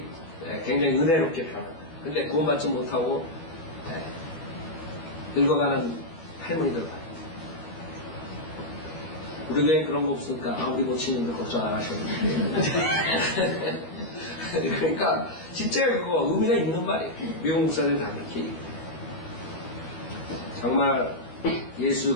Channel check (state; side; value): late; right; 12 ms